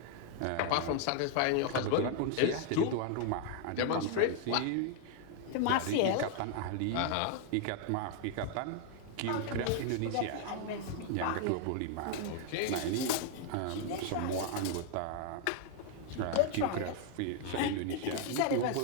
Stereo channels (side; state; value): both; different; correlation 0.00